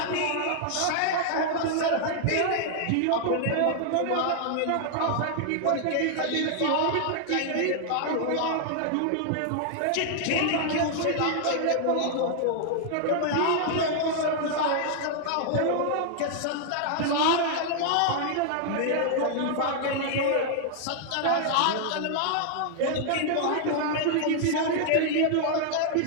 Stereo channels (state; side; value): different; both; correlation -0.01